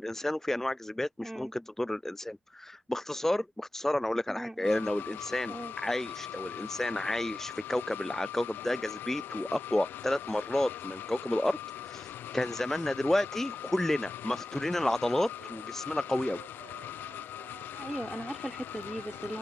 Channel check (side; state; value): both; normal; correlation 0.95